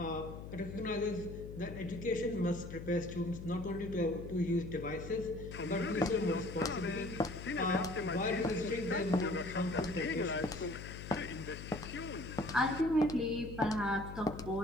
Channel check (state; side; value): noise; left; hum, 10 dB below the sound